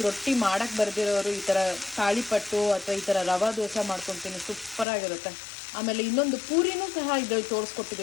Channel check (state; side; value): drops out; right; at 4.9 s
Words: ರೊಟ್ಟಿ ಮಾಡೋಕ್ಕೆ ಬರ್ದಿರೋರು ಈ ಥರ ತಾಳಿಪಟ್ಟು ಅಥವಾ ಈ ಥರ ರವಾ ದೋಸೆ ಮಾಡ್ಕೊತೀನಿ, ಸೂಪರಾಗಿರುತ್ತೆ. ಆಮೇಲೆ ಇನ್ನೊಂದು ಪೂರಿನೂ ಸಹ ಇದ್ರಲ್ಲಿ